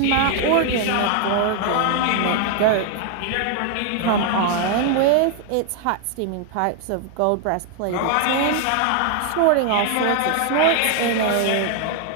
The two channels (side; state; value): both; different; correlation 0.00